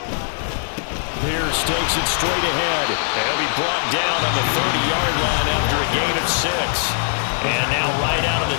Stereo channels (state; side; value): silent; right; digital silence